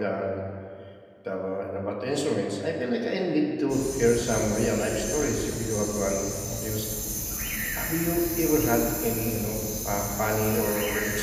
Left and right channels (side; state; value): both; identical; correlation 1.00